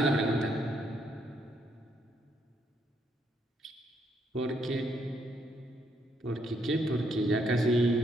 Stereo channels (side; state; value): both; normal; correlation 0.74